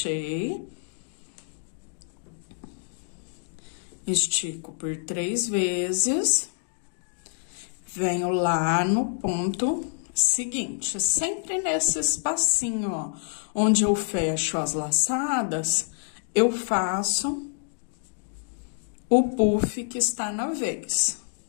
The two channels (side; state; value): right; silent; digital silence